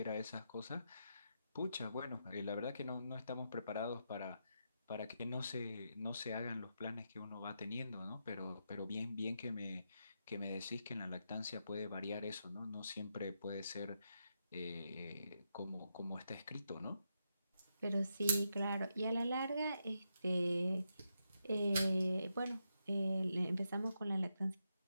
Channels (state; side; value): inverted; both; correlation -0.84